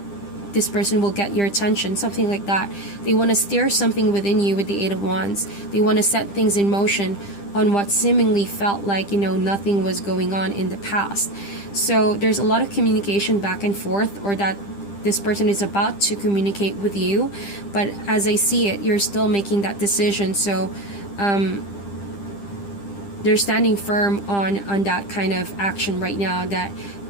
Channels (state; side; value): late; right; 10 ms